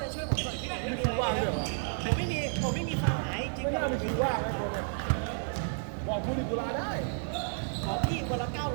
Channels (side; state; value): left; silent; 57 dB below the other